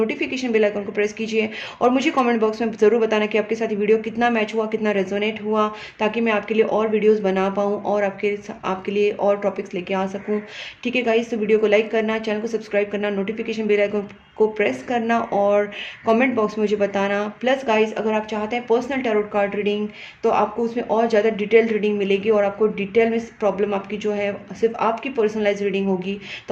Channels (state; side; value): identical; both; correlation 1.00